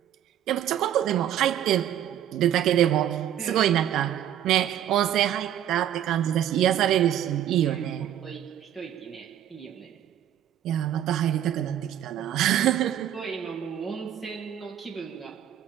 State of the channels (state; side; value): quieter; left; 10.8 dB